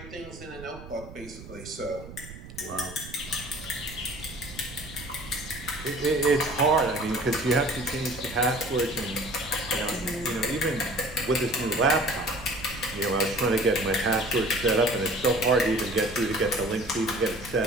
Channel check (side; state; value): right; noise; rumble, 15 dB below the sound